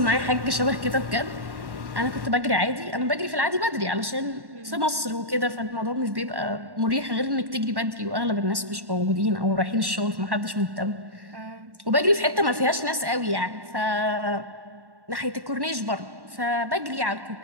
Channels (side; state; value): left; late; 1.1 ms